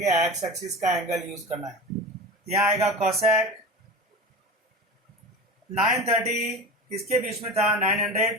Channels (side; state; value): both; normal; correlation 0.31